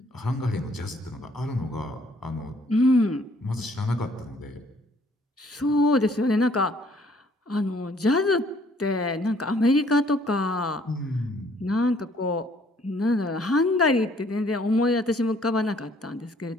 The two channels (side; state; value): both; normal; correlation 0.62